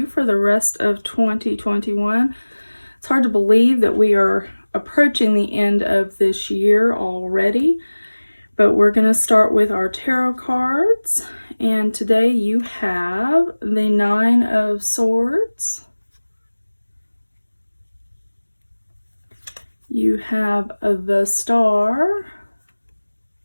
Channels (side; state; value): both; inverted; correlation -1.00